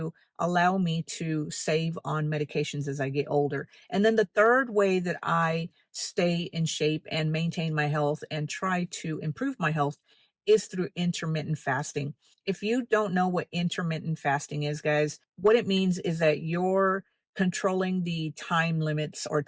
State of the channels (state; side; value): identical; both; correlation 1.00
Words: allow me to save on medications as I get older. And then the third way that I stay in shape and maintain my health and try to improve my health is through intermittent fasting. If you don't know what intermittent fasting is, guys, what it means is that you're controlling the time limits or